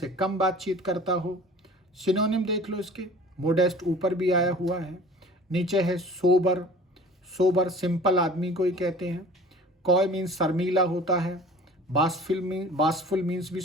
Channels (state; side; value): normal; both; correlation 0.45